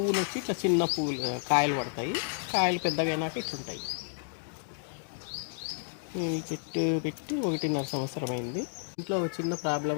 వచ్చి ఇట్లా చిన్న పువ్వులు కాయలు పడతాయి. కాయలు పెద్దగా అయినాక ఇట్లుంటాయి. ఈ చెట్టు పెట్టి 1.5 సంవత్సరం అయింది. ఇంట్లో ఒక చిన్న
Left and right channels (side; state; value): right; silent; digital silence